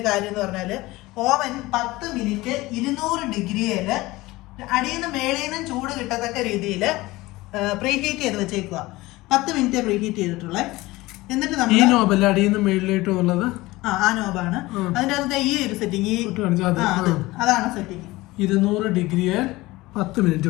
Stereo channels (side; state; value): right; quieter; 19.8 dB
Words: കാര്യം എന്ന് പറഞ്ഞാൽ ഓവൻ 10 മിനിറ്റ് 200 ഡിഗ്രിയിൽ അടിയിൽ നിന്ന് മേളിൽ നിന്നും ചൂട് കിട്ടത്തക്ക രീതിയിൽ പ്രീഹീറ്റ് ചെയ്ത് വെച്ചേക്കുക. 10 മിനിറ്റ് പ്രീഹീറ്റ് ചെയ്തിട്ടുള്ളത്. എന്നിട്ട് നമ്മൾ ആ നോബാണ് അതിൻ്റെ അകത്ത് ഈ ഒരു സെറ്റിങ്. അതാണ് സെറ്റിങ്. 200 ഡിഗ്രിയിൽ 10 മിനിറ്റ്